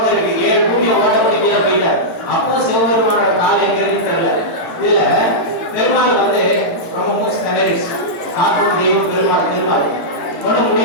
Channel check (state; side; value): late; right; 17 ms